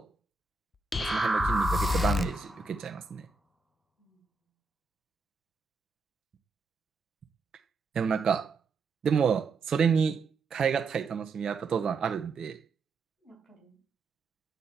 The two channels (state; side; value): quieter; left; 3.9 dB